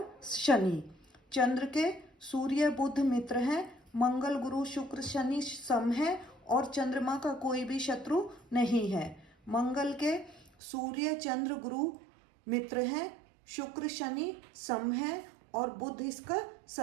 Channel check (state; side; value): drops out; left; at 10.5 s